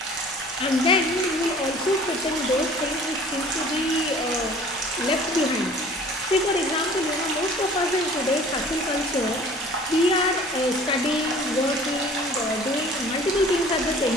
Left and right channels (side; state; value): both; normal; correlation 0.48